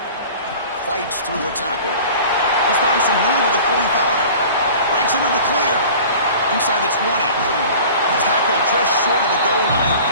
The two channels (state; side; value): inverted; both; correlation -0.42